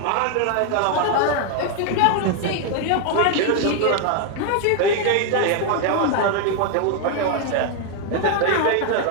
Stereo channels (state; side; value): different; both; correlation 0.00